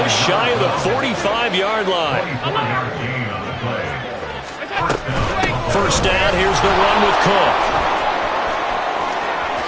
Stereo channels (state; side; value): identical; both; correlation 1.00